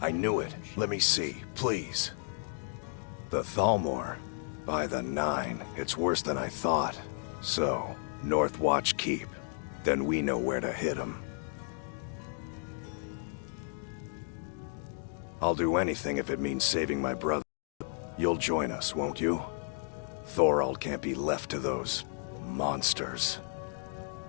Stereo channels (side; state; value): right; silent; 55 dB below the other